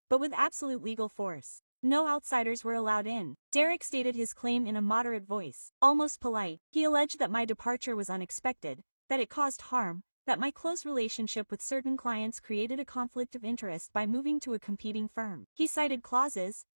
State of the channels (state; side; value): inverted; both; correlation -1.00